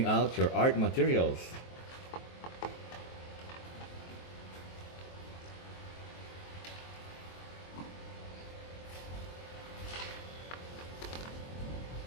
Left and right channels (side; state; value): right; late; 23 ms